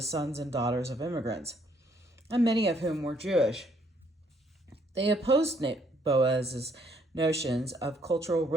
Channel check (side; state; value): both; normal; correlation 0.68